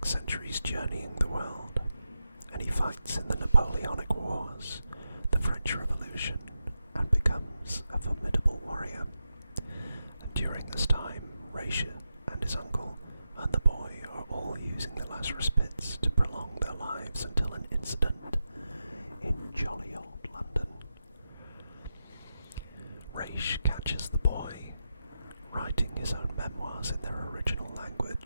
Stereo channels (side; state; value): both; inverted; correlation -0.89